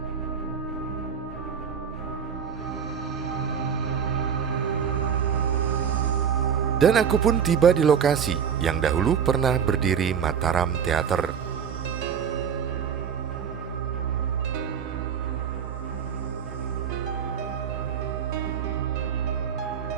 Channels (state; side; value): quieter; left; 7.4 dB